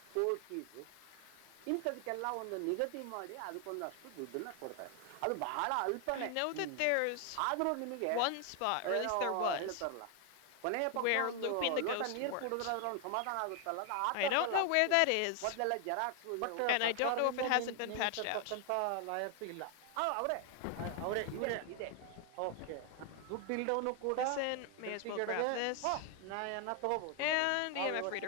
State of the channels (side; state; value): both; different; correlation 0.00